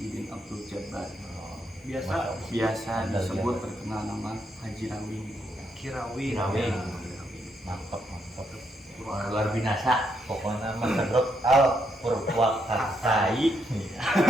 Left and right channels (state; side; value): normal; both; correlation 0.78